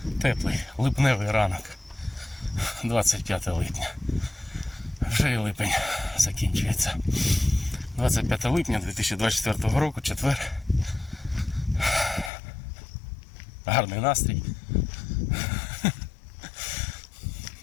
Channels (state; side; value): drops out; right; at 12.3 s